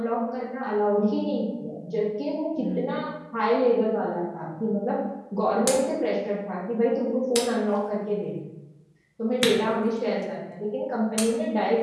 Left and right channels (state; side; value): identical; both; correlation 1.00